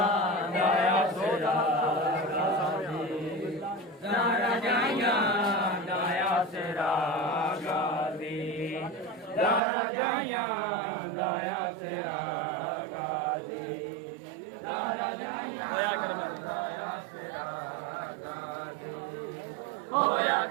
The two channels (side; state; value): left; drops out; at 9.6 s